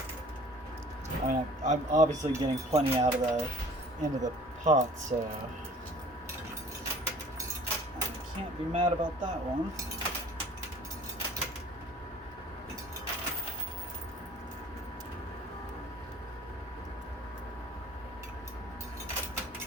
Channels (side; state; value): both; normal; correlation 0.50